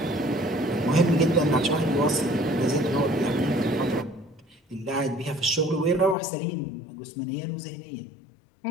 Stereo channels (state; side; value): drops out; right; at 6.2 s